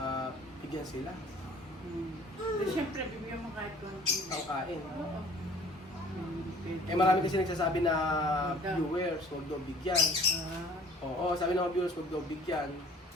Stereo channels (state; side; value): normal; both; correlation 0.51